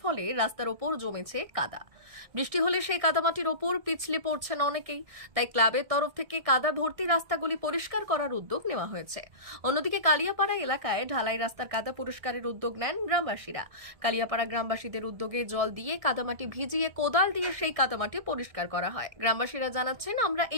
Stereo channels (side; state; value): left; late; 1.6 ms